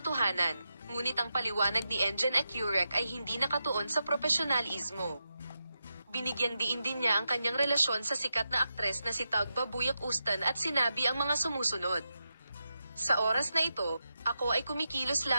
ngunit ang paliwanag ni Engin Accurek ay hindi nakatuon sa profesionalismo. Binigyang diin din niya ang kanyang relasyon sa sikat na aktres na si Tagba Buyak-Ustan at sinabi ang mga sumusunod. Sa oras na ito, ako ay kumikilos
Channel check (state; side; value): inverted; both; correlation -0.88